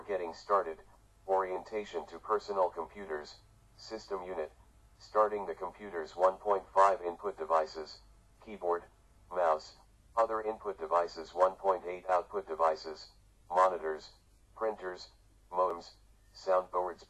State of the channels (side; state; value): both; identical; correlation 1.00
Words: Getting started. Orientation to personal computers. System unit. Starting the computer's 1.5 input devices, keyboard, mouse, other input devices 1.8 output devices, monitors, printers, modems, soundboards